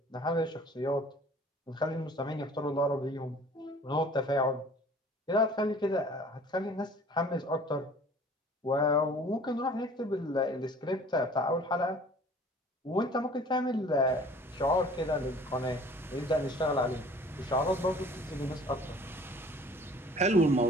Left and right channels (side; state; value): both; normal; correlation 0.49